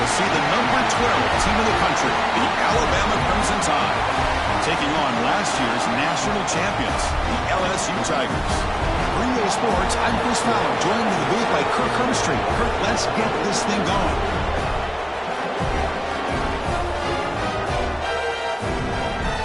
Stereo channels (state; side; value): identical; both; correlation 1.00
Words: see the number 12 team in the country, the Alabama Crimson Tide, taking on last year's national champions, the LSU Tigers. For EA Sports, I'm Chris Fowler, joined in the booth by Kirk Hermstreet. Kirk, let's get this thing going.